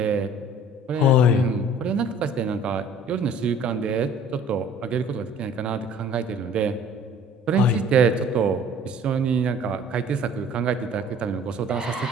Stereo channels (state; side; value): normal; both; correlation 0.51